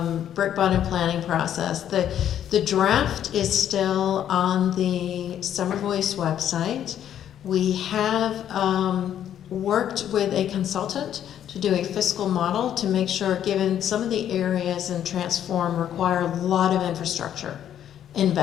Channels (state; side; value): quieter; right; 10.3 dB